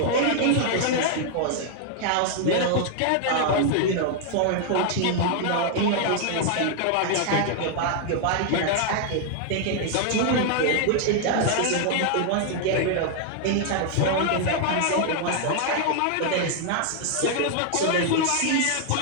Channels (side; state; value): both; different; correlation 0.00